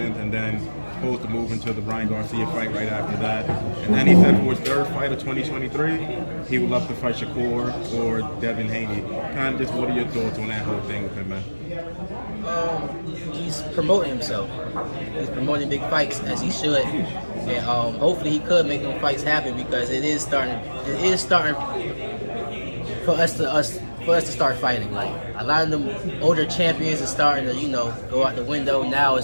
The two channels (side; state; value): both; inverted; correlation -1.00